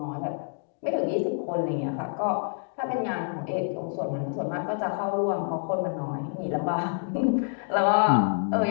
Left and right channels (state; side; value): silent; right; digital silence